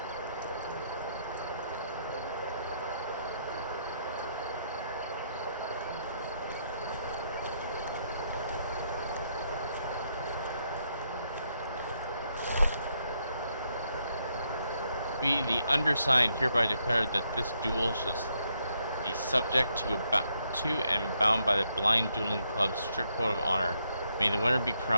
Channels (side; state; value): both; inverted; correlation -0.76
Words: We, the undersigned, hereby declare that this duel shall be subject to and bound by the Blind Dueling Club's strict code of honor. May the winner be